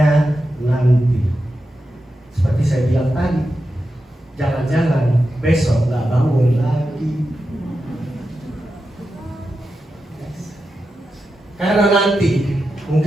nanti. Seperti saya bilang tadi, jangan-jangan besok gak bangun lagi. Karena nanti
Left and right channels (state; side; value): normal; both; correlation 0.90